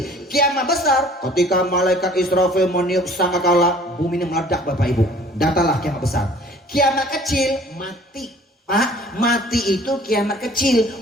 Kiamat besar ketika malaikat Israfil meniup sangkakala, bumi ini meledak Bapak Ibu. Datalah kiamat besar. Kiamat kecil mati. Pak, mati itu kiamat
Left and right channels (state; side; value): normal; both; correlation 0.51